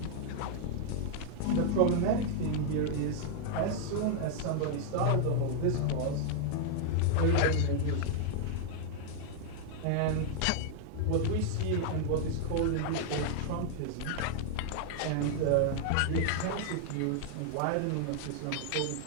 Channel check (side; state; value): both; different; correlation -0.01